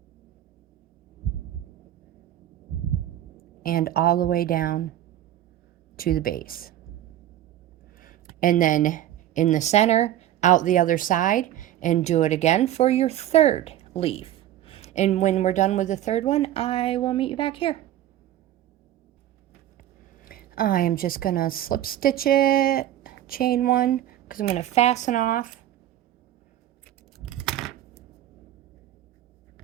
And all the way down to the base. And then in the center, out the other side, and do it again for your third leaf. And when we're done with the third one, I will meet you back here. I am just gonna slip stitch it, chain one, because I'm gonna fasten off.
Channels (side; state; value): left; quieter; 12.5 dB